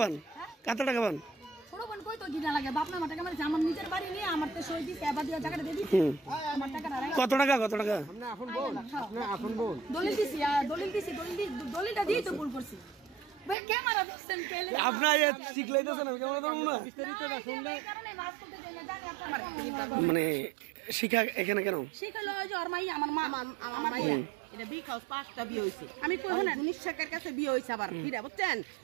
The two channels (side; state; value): left; drops out; at 13.6 s